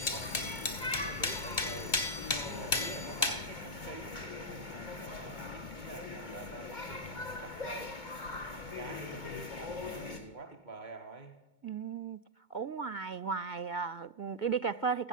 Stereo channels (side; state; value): right; late; 2.2 ms